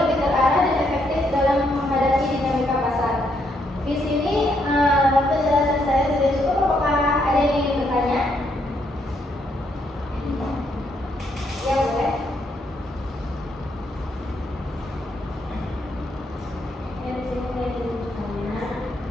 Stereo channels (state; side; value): normal; both; correlation 0.75